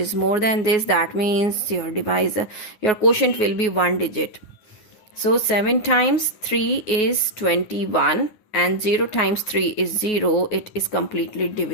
more than this. That means your divisor, your quotient will be 1 digit. So 7 times 3 is 21 and 0 times 3 is 0. It is completely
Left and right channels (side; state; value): right; late; 9.9 ms